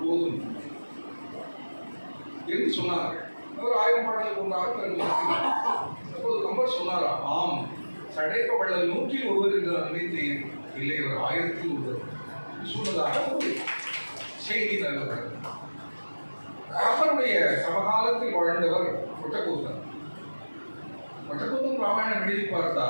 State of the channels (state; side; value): inverted; both; correlation -1.00